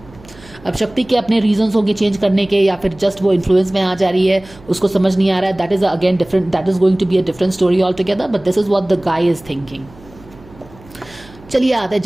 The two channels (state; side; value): noise; right; hum, 23 dB below the sound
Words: अब शक्ति के अपने रीजंस होंगे चेंज करने के, या फिर जस्ट वो इन्फ्लुएंस में आ जा रही है, उसको समझ नहीं आ रहा है। That is again different, that is going to be a different story all together, but this is what the guy is thinking. चलिए आते हैं